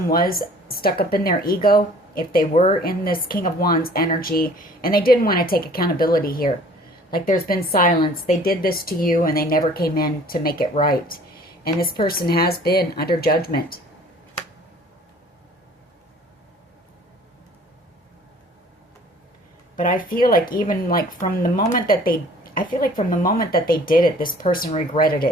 was stuck up in their ego. If they were in this King of Wands energy. And they didn't want to take accountability here. Like there's been silence. They did this to you and they never came in to make it right. And this person has been under judgment. But I feel like even like from the moment that they, I feel like from the moment that they did it, this person regretted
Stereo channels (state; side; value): normal; both; correlation 0.51